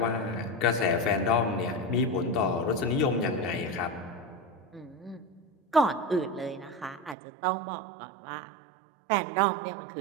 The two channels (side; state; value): left; drops out; at 7.2 s